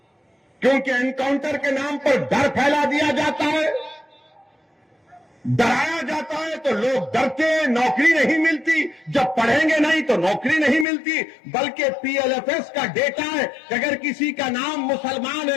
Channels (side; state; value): right; drops out; at 10.9 s